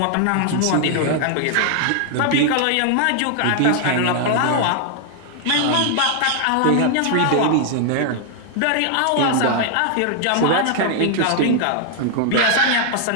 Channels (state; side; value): different; both; correlation 0.00